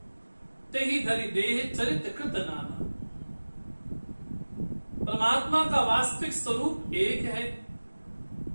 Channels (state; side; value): inverted; both; correlation -1.00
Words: तेहि धरि देह चरित कृत नाना। परमात्मा का वास्तविक स्वरूप एक है।